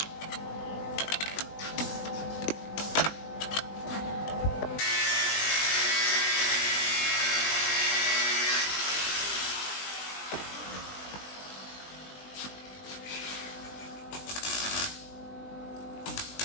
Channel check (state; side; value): late; right; 20 ms